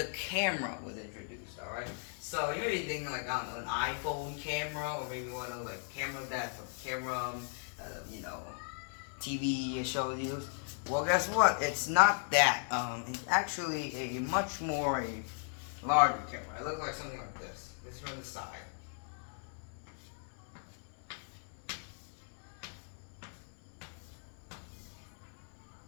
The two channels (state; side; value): silent; right; 53 dB below the other